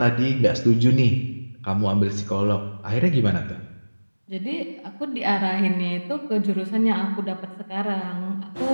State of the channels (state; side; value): inverted; both; correlation -1.00